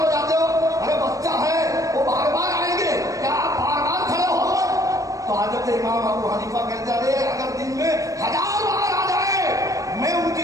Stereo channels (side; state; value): left; late; 0.16 ms